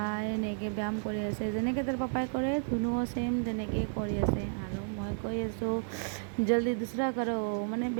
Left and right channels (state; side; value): silent; left; 56 dB below the other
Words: এনেকৈ ব্যায়াম কৰি আছে। যেনেকৈ তাৰ পাপাই কৰে ধুনুও ছেম তেনেকৈ কৰি আছে। আৰু মই কৈ আছোঁ জল্দি দুচৰা কৰোঁ, মানে